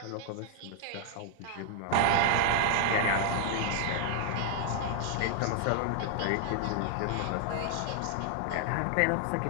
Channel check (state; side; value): different; both; correlation 0.00